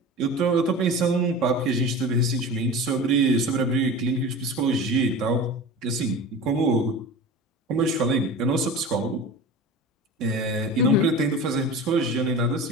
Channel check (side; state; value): both; normal; correlation 0.33